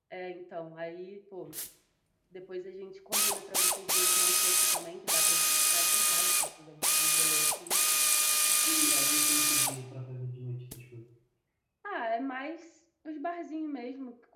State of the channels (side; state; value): both; identical; correlation 1.00